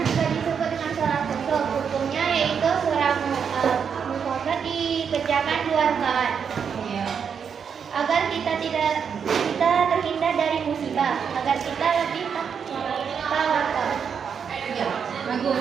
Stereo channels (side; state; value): left; quieter; 6.9 dB